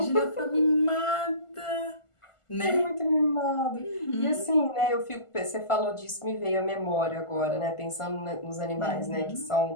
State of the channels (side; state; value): right; late; 1.4 ms